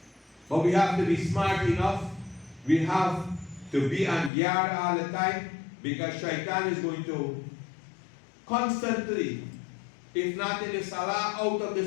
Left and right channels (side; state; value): right; drops out; at 4.3 s